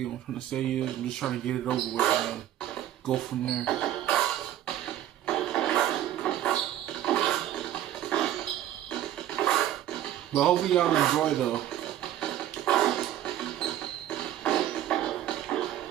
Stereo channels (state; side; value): quieter; left; 12.2 dB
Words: what I'm trying to say is I'm just trying to get it over with and go from there. But hopefully y'all enjoy though.